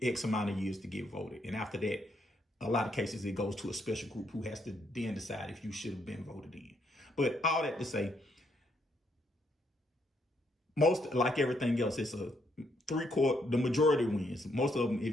X amount of years to get voted. And after that, a lot of cases, it goes to a special group who has to then decide if you should have been voted in. But all that to say, most, like everything else, it's a the majority wins. Most of them,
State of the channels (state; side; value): normal; both; correlation 0.74